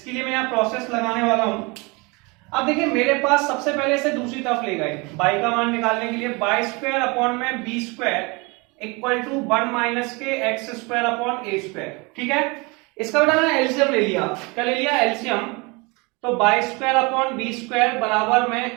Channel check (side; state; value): left; quieter; 27.6 dB